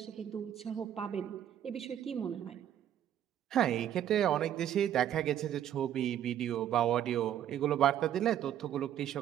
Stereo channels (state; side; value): quieter; left; 10.6 dB